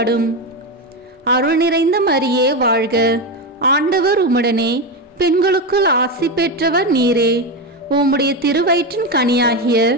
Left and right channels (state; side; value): normal; both; correlation 0.13